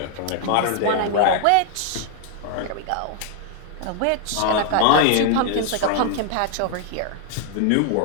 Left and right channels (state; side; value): different; both; correlation 0.00